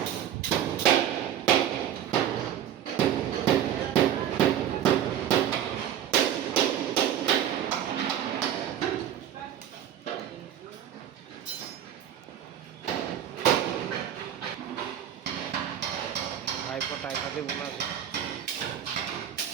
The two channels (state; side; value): quieter; left; 10.4 dB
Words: ভাইপো টাইপাতে বোনা আছে।